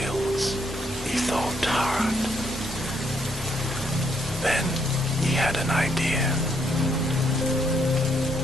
he thought hard. Then he had an idea.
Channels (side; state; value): both; normal; correlation 0.73